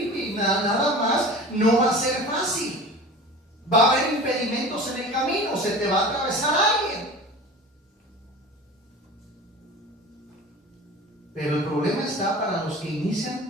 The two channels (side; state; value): both; normal; correlation 0.37